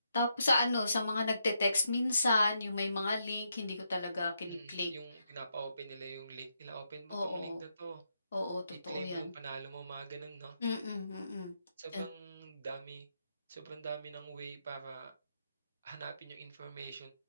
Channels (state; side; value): inverted; both; correlation -0.81